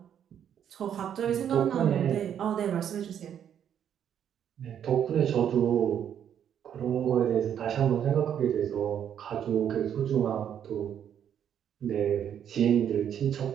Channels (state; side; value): quieter; left; 9.2 dB